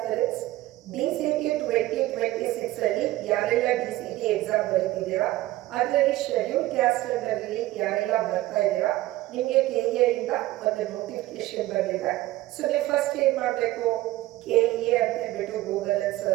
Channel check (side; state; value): left; quieter; 16.8 dB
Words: DCT 2026 ಅಲ್ಲಿ ಯಾರೆಲ್ಲ DCT exam ಬರೀತಿದ್ದೀರಾ, ಅದರಲ್ಲಿ ಶೆಡ್ಯೂಲ್ ಕ್ಯಾಸ್ಟ್ ಅಲ್ಲಿ ಯಾರೆಲ್ಲ ಬರ್ತಾ ಇದ್ದೀರಾ, ನಿಮಗೆ ಕೆಇಎ ಇಂದ ಒಂದು ನೋಟಿಫಿಕೇಶನ್ ಬಂದಿದೆ. ಸೊ ನೀವು ಫಸ್ಟ್ ಏನು ಮಾಡಬೇಕು, ಕೆಇಎ ಅಂತ ಹೇಳ್ಬಿಟ್ಟು ಗೂಗಲ್ ಅಲ್ಲಿ